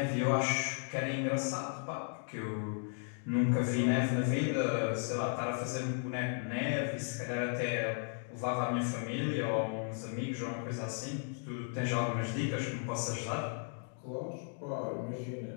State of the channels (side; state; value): right; silent; 54 dB below the other